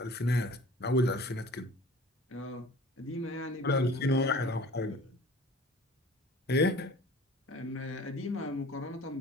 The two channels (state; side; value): normal; both; correlation 0.45